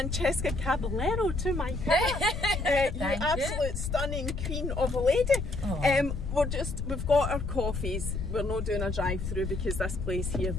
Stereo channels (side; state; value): left; noise; rumble, 4 dB below the sound